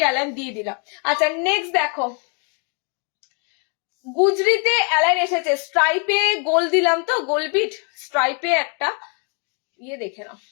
অ্যালাইন দিয়ে দিলাম। আচ্ছা নেক্সট দেখো, গুজরিতে অ্যালাইন এসেছে, স্ট্রাইপে গোল দিলাম তো, গোল বিট স্ট্রাইপে একটা ইয়ে দেখে নাও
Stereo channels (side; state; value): right; quieter; 37.4 dB